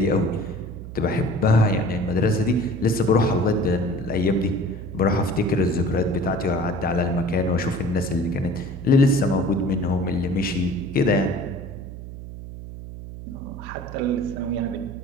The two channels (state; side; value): noise; right; hum, 11 dB below the sound